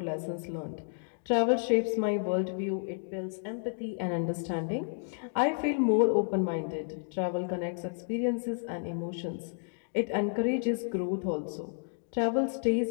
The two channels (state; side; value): silent; right; digital silence